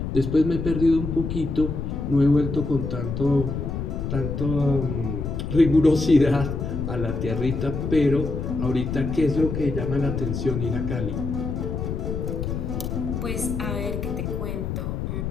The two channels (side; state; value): left; noise; rumble, 3 dB below the sound